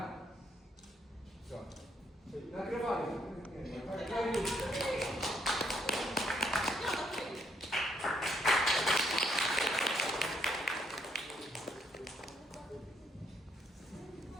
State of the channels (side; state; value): both; normal; correlation 0.71